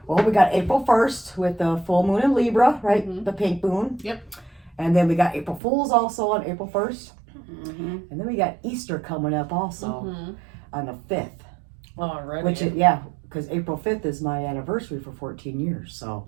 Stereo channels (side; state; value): left; drops out; at 5.6 s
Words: well, we got April 1st with the full moon in Libra, right? Mhm. The pink moon. Yep. And then we got April Fools also on April 1st. Mm-hmm. And then we got Easter coming up also on the 5th. Already. Which is, because April 5th is my anniversary for 14 years. So,